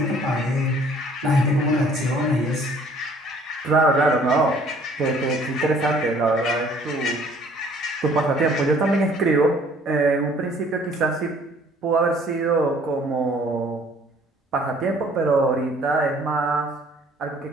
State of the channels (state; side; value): normal; both; correlation 0.57